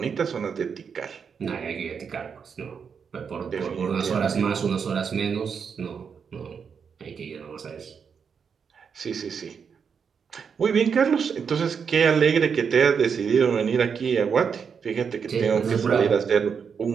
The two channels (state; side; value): quieter; left; 6.5 dB